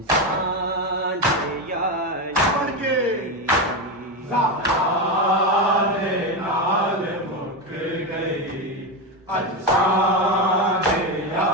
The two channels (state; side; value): normal; both; correlation 0.13